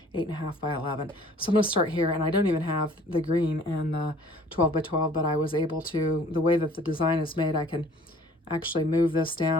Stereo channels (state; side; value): normal; both; correlation 0.53